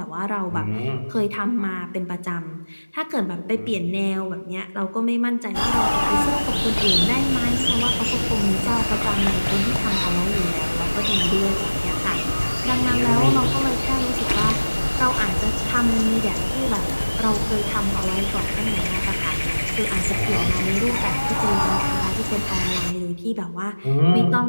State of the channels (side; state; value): both; inverted; correlation -1.00